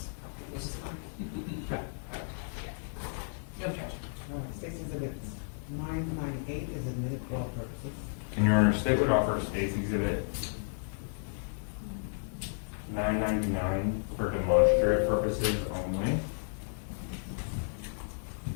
it's just fine. No objection. All right, State's Exhibit 998 is admitted for all purposes. And Your Honor, State would offer State's Exhibit 999 for demonstrative purposes only.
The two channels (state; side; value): silent; right; digital silence